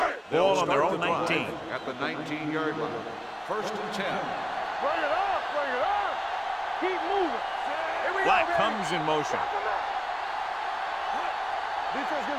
Ball on their own 19. At the 19-yard line. First and 10. Bring it up. Bring it up. Keep moving. Here we Black go, baby. comes in motion. Defense,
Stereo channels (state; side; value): identical; both; correlation 1.00